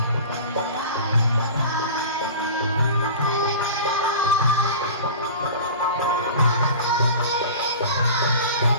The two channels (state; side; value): inverted; both; correlation -0.36